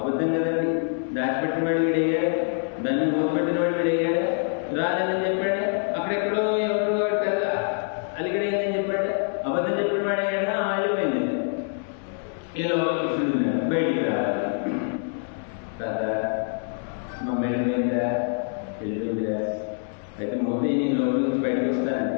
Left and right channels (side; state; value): right; silent; 58 dB below the other